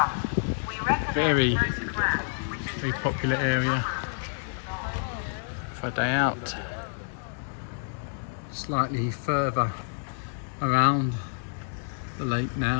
Very popular area for a day out. Slightly further around the lake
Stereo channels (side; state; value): right; silent; digital silence